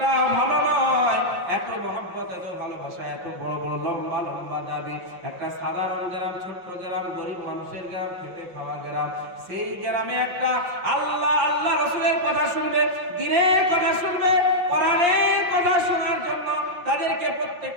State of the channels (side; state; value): left; late; 5.7 ms